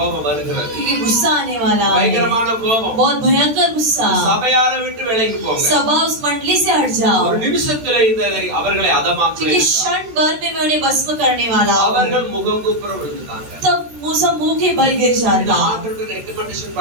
வருகிறது. क्योंकि गुस्सा आने वाला है, பயங்கரமான கோபம். बहुत भयंकर गुस्सा। சபையாரை விட்டு விலகி போங்க. सभा उस मंडली से हट जाओ, ஒரு நிமிஷத்துல இந்த அவர்களை அதமாக்குவேன். क्योंकि क्षण भर में मैं उन्हें भस्म करने वाला हूँ। அவர்கள் முகங்குப்புற விழுந்தாங்க. तब मूसा मुंह के बल गिर जाता, ஆண்டவருக்கு ரெக்கமெண்டேஷன்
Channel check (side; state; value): left; late; 13 ms